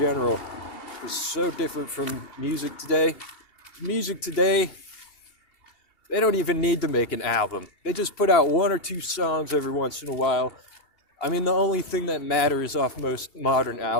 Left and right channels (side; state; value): right; late; 2.8 ms